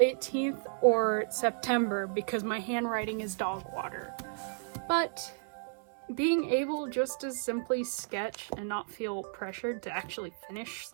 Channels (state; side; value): silent; left; digital silence